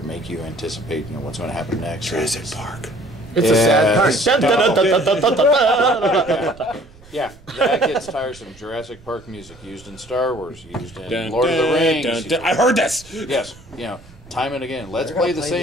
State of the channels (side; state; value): right; noise; rumble, 23 dB below the sound